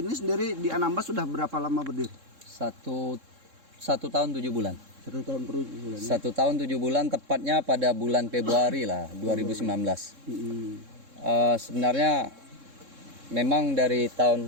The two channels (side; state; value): left; late; 3.7 ms